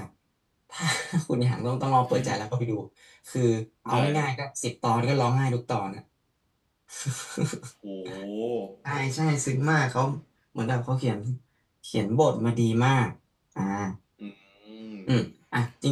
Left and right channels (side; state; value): both; identical; correlation 1.00